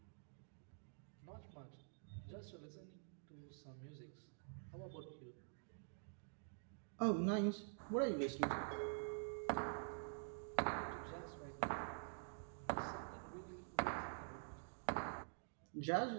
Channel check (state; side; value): silent; left; digital silence